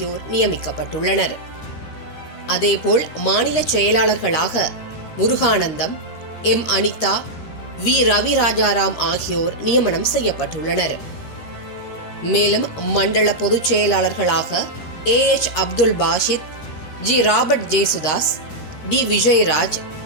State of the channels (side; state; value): right; late; 13 ms